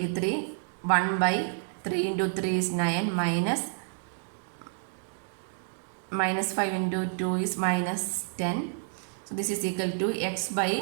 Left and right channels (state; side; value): silent; left; digital silence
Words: 1 by 3 into 3 is 9 minus 5 into 2 is minus 10. So this is equal to x